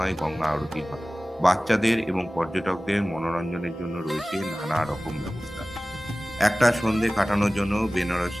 গঙ্গা আরতি হয়। বাচ্চাদের এবং পর্যটকদের মনোরঞ্জনের জন্য রয়েছে নানা রকম ব্যবস্থা। একটা সন্ধে কাটানোর জন্য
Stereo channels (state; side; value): normal; both; correlation 0.97